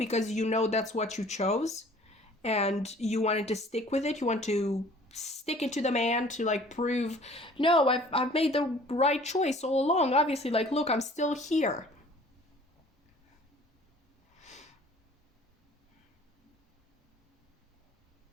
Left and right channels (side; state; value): both; normal; correlation 0.51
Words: you know that's what you chose and you wanted to stick with it. You want to stick it to the man to like prove, no, I've made the right choice all along. Obviously, like, look, I'm still here.